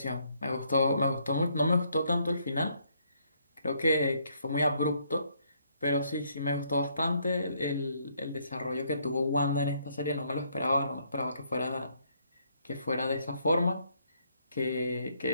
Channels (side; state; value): both; inverted; correlation -0.70